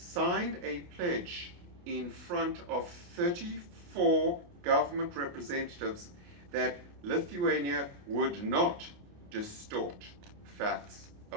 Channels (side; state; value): left; late; 29 ms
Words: a pledge in front of 34 government representatives that Lithuania would not distort facts